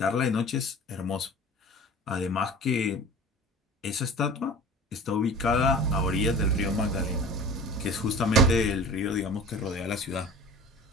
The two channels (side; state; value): both; normal; correlation 0.40